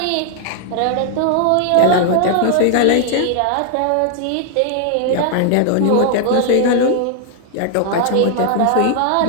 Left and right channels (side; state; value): both; different; correlation 0.00